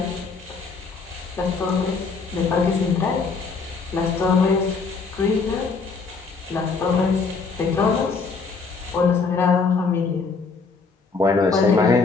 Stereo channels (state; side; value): quieter; right; 4.6 dB